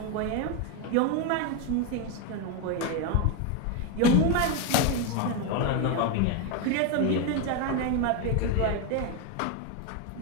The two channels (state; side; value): different; both; correlation 0.02